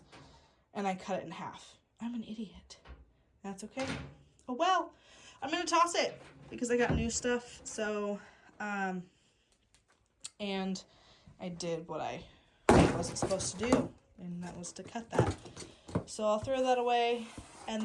and I cut it in half. I'm an idiot. That's okay. Oh well, I'm going to toss it because I got new stuff. So, and I did what I wasn't supposed to do, and that was to cut that. So I'll throw that away,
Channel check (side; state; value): both; identical; correlation 1.00